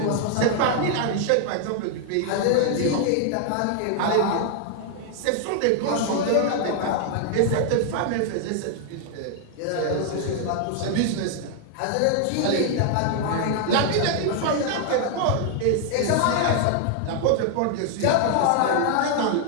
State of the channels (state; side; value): different; both; correlation 0.00